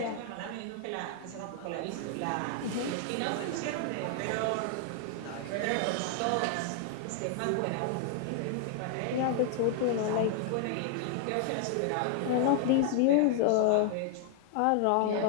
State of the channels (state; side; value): different; both; correlation 0.00